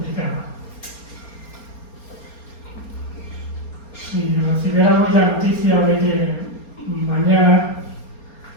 Si recibiéramos la noticia de que mañana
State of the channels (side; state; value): right; late; 4.3 ms